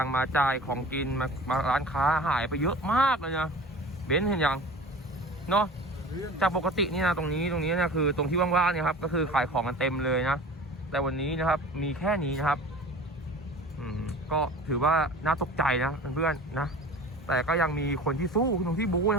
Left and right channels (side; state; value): both; normal; correlation 0.39